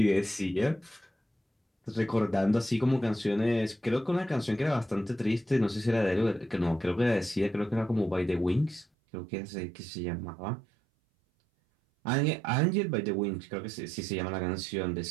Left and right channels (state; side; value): drops out; left; at 8.8 s